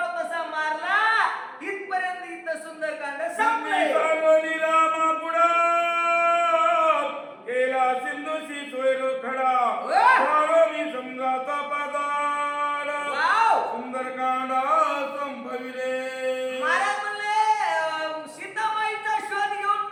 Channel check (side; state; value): both; identical; correlation 1.00